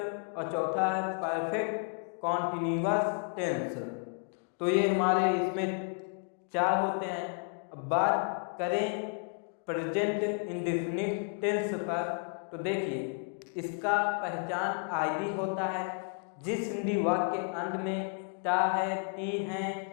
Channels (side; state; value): right; quieter; 39.8 dB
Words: और चौथा है परफेक्ट कॉन्टिन्यूअस टेंस। तो ये हमारे इसमें 4 होते हैं। अब बात करें प्रेजेंट इंडेफिनिट टेंस पर, तो देखिए इसका पहचान आदि होता है। जिस हिंदी वाक्य के अंत में टा है, टी है,